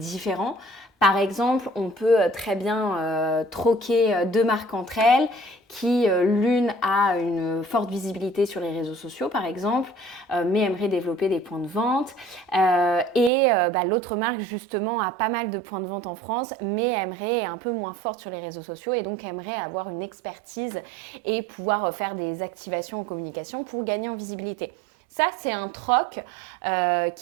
Par exemple, on peut très bien troquer deux marques entre elles qui l'une a une forte visibilité sur les réseaux sociaux par exemple, mais aimerait développer des points de vente et l'autre marque justement a pas mal de points de vente en France mais aimerait un peu moins forte sur les réseaux sociaux et donc aimerait avoir une expertise et pouvoir faire des activations en communication pour gagner en visibilité. Ça, c'est un troc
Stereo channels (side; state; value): left; drops out; at 13.3 s